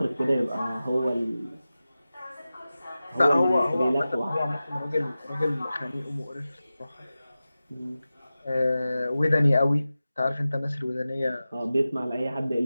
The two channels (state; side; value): inverted; both; correlation -0.95